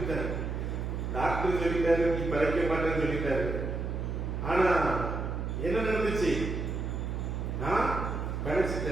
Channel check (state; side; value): noise; right; hum, 3 dB below the sound